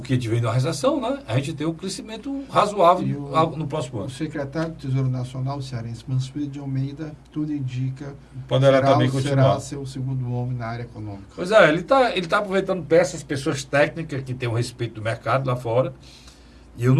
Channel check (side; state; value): both; identical; correlation 1.00